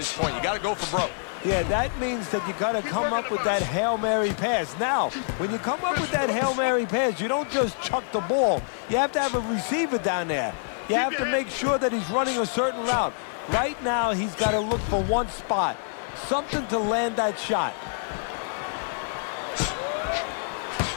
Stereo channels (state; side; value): silent; right; digital silence